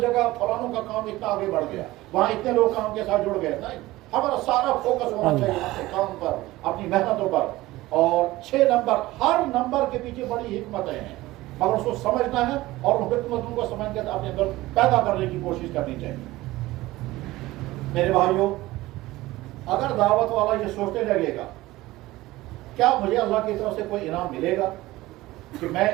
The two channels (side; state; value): left; quieter; 18.1 dB